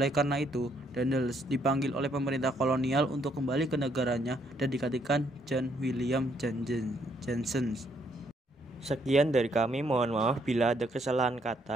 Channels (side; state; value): both; normal; correlation 0.71